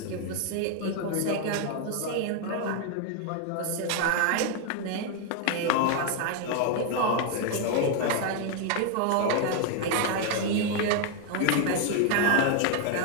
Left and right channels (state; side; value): different; both; correlation 0.01